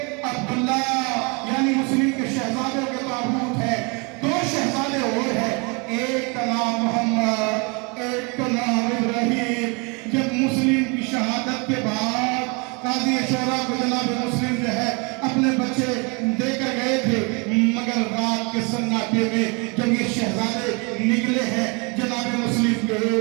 عبداللہ یعنی مسلم کے شہزادوں کے تابوت ہے، دو شہزادے اور ہیں، ایک کا نام محمد، ایک کا نام ابراہیم۔ جب مسلم کی شہادت کے بعد قاضی شورا کو جناب مسلم جو ہے اپنے بچے دے کر گئے تھے، مگر رات کے سناٹے میں جب یہ شہزادے نکلے ہیں جناب مسلم کے،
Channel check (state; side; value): quieter; left; 31.3 dB